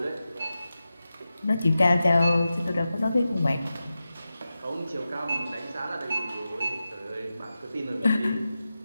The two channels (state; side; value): inverted; both; correlation -0.93